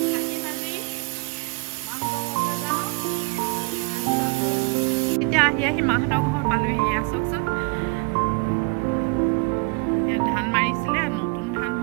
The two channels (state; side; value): quieter; left; 30.8 dB